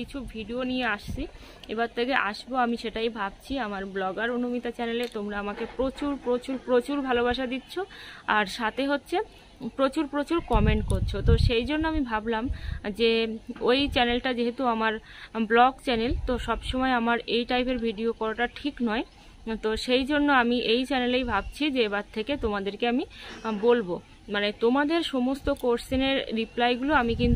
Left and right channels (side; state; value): both; identical; correlation 1.00